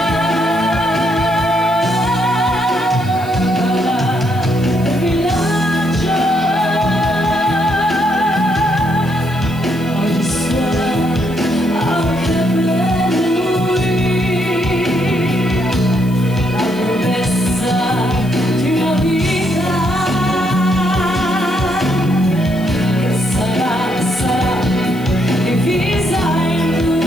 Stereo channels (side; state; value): left; noise; hiss, 21 dB below the sound